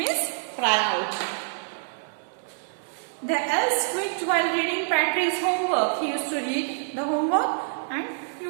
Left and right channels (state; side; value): silent; left; 61 dB below the other